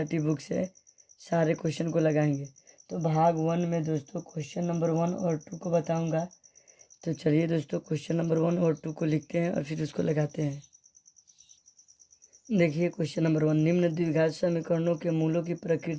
बुक से सारे क्वेश्चन को लगाएंगे। तो भाग 1 में दोस्तों क्वेश्चन नंबर 1 और 2 को बताऊंगा। तो चलिए दोस्तों क्वेश्चन नंबर 1 और 2 को लिखते हैं और फिर उसको लगाते हैं। देखिए क्वेश्चन नंबर 1, निम्न द्विघात समीकरणों के मूलों की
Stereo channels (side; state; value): both; identical; correlation 1.00